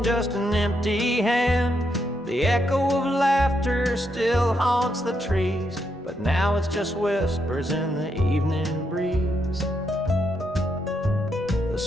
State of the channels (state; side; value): normal; both; correlation 0.79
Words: just an empty hand. The echo of laughter still haunts the trees, but now it's just whispers in the evening breeze. The